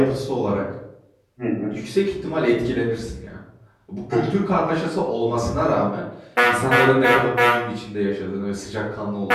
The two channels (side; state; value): both; identical; correlation 1.00